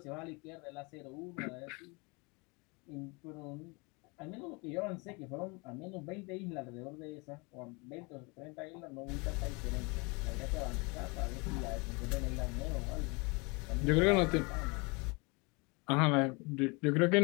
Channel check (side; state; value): right; quieter; 28.9 dB